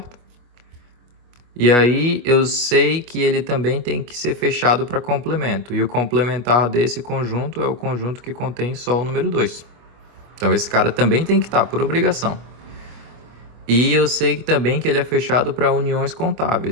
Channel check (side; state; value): left; late; 25 ms